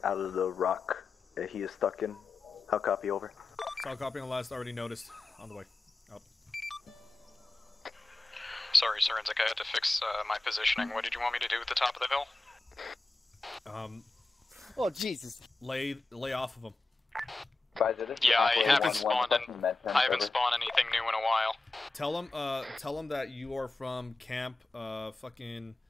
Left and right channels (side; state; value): right; quieter; 3.3 dB